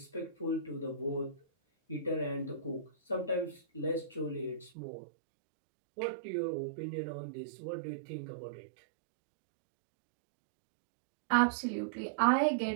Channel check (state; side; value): drops out; left; at 4.7 s